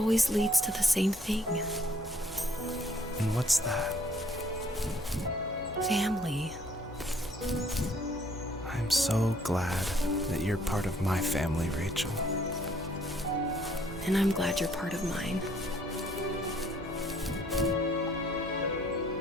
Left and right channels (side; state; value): both; normal; correlation 0.63